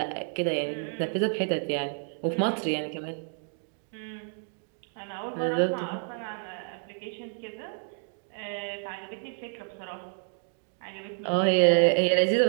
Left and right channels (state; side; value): silent; left; 56 dB below the other